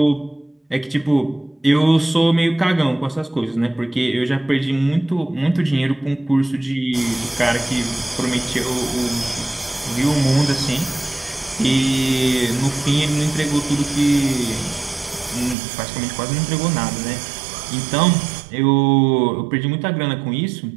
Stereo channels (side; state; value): left; drops out; at 15.6 s